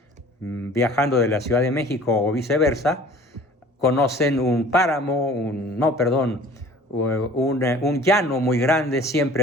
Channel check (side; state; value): both; normal; correlation 0.48